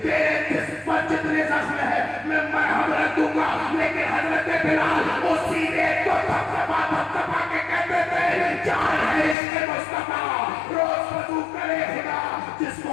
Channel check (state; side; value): drops out; right; at 9.3 s